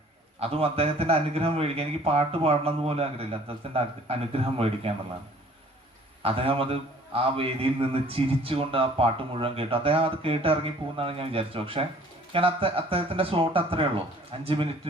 അതും അദ്ദേഹത്തിന്റെ അനുഗ്രഹം മേടിക്കാൻ. എനിക്ക് പാട്ട് പാടണം എന്ന് പോലും ആഗ്രഹമില്ല, അദ്ദേഹത്തിന്റെ അനുഗ്രഹം മേടിക്കുക എന്നുള്ളതാണ്. അദ്ദേഹം ആ വേദിയിൽ നിന്ന് ചിരിച്ചുകൊണ്ട് ആ പാട്ട് മുഴുവൻ കേട്ടു. അദ്ദേഹം അത് കേട്ട് ഇറങ്ങി പോകുന്നതാണ് ഞാൻ വിചാരിച്ചു. പക്ഷെ ഞാൻ അദ്ദേഹത്തിന്റെ സ്ലോട്ട് അത്രേ ഉള്ളൂ. 5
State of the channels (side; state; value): both; normal; correlation 0.53